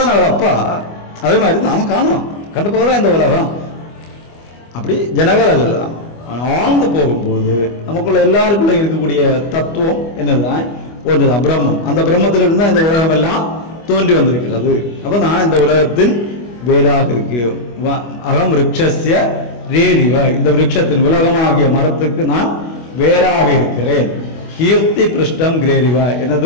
அவர் அப்பா. அதே மாதிரி நாம காணும், கண்ட போகதான் இந்த உலகம். அப்படி ஜனகரை சொல்லலாம். ஆழ்ந்து போகும்போது நமக்குள்ள எல்லாருக்குள்ள இருக்கக்கூடிய தத்துவம் என்னதுதான்? ஒன்றுதான், பிரம்மம். அந்த பிரம்மத்திலிருந்து தான் இந்த உலகம் எல்லாம் தோன்றி வந்திருக்கிறது. அப்ப நான் இந்த உலகத்தின் வேறாக இருக்கு. அகம் விருக்ஷஸ்ய ரேரிவ, இந்த விருட்சத்தின் உலகமாகிய மரத்துக்கு நான் வேறாக இருக்கிறேன். கீர்த்தி பிருஷ்டம் கிரேரிவ,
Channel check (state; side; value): late; right; 25 ms